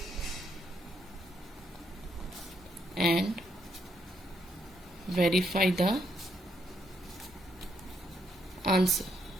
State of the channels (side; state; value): both; normal; correlation 0.75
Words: and verify the answer.